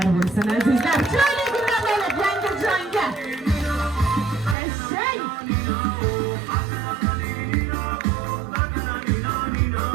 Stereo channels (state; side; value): drops out; left; at 4.5 s